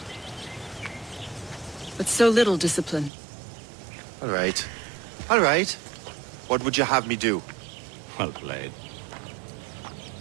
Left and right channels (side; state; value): left; drops out; at 3.1 s